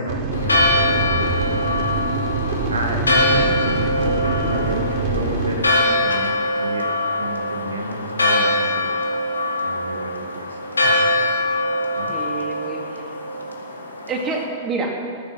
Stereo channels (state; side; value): inverted; both; correlation -0.54